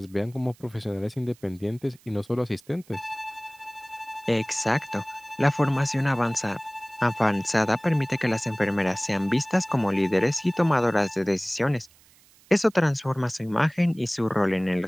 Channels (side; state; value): right; noise; hiss, 29 dB below the sound